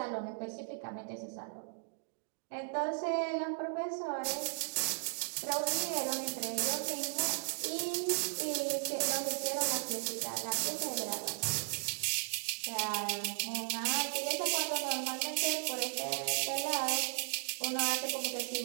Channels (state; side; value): silent; left; digital silence